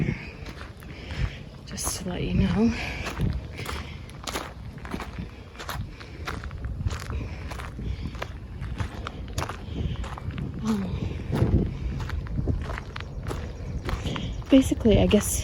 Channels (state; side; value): identical; both; correlation 1.00